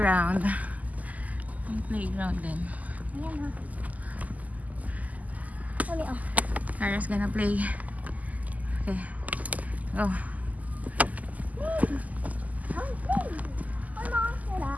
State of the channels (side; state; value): left; late; 0.077 ms